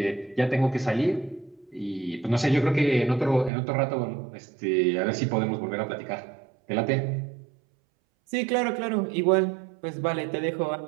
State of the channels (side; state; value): left; drops out; at 3.5 s